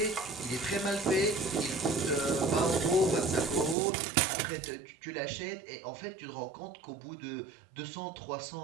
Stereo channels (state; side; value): drops out; left; at 3.8 s